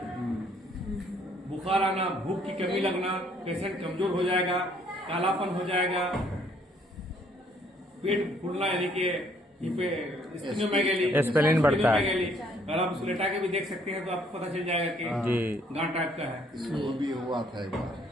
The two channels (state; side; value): normal; both; correlation 0.64